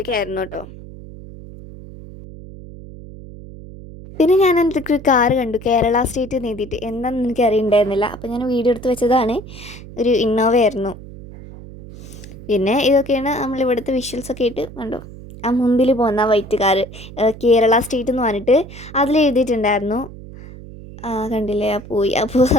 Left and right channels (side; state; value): right; noise; hum, 15 dB below the sound